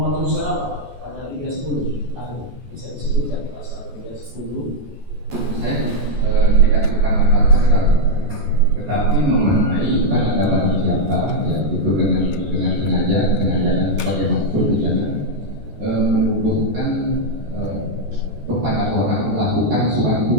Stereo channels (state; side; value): late; left; 14 ms